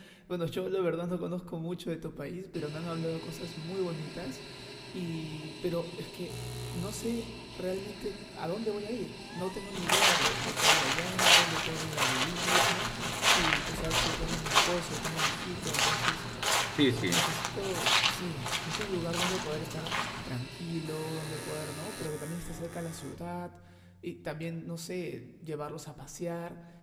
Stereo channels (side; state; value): both; identical; correlation 1.00